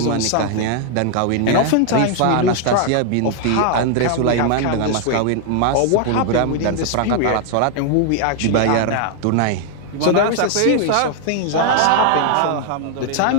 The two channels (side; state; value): both; different; correlation 0.00